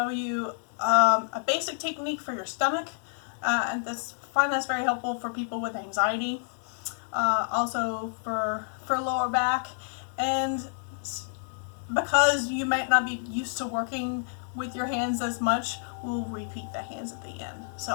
you a basic technique for your stomach, and find that's very helpful for people with anxiety. Also for lower back, and because you might not be used to working with your hands as much, we'll repeat the hands at the end.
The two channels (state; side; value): silent; right; digital silence